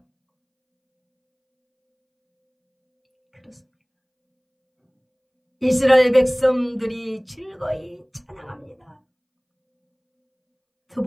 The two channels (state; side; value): identical; both; correlation 1.00